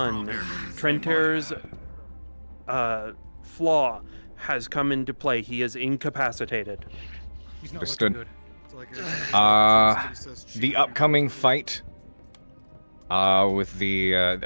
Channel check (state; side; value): inverted; both; correlation -1.00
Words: Trenter's flaw has come into play. He is incapacitated. He's not Understood. looking good. The upcoming fight with